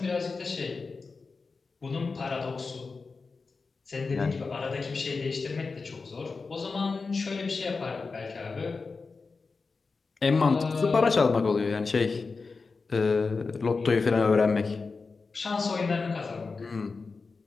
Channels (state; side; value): quieter; right; 4.4 dB